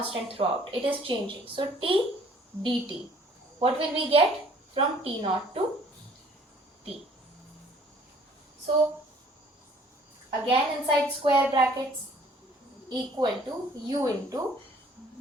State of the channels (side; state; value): both; normal; correlation 0.57